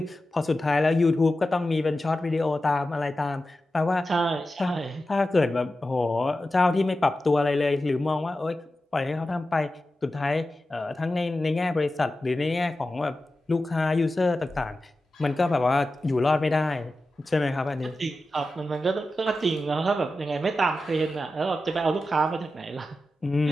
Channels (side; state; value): both; normal; correlation 0.93